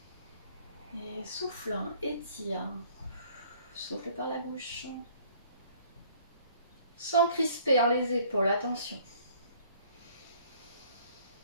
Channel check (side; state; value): both; inverted; correlation -0.56